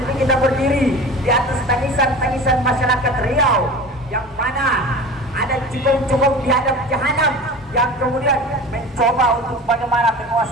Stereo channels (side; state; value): both; normal; correlation 0.36